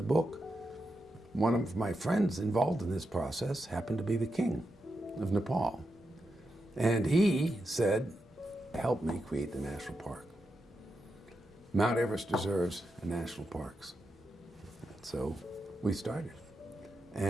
book, one of my friends involved in this process happened to be the king of Nepal. And he said, help me create the national park. Mount Everest deserves a national park. So we started.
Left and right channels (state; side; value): normal; both; correlation 0.87